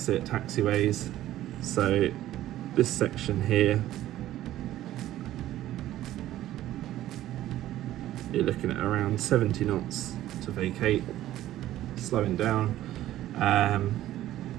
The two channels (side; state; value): left; quieter; 13.8 dB